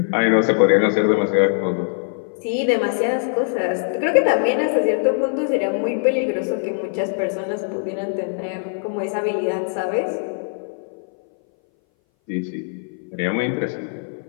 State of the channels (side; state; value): right; silent; 60 dB below the other